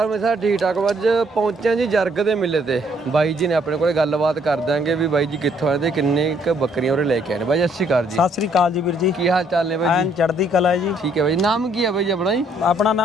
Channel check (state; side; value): normal; both; correlation 0.67